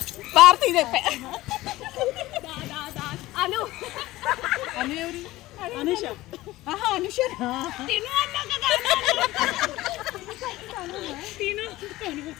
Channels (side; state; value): right; quieter; 17.6 dB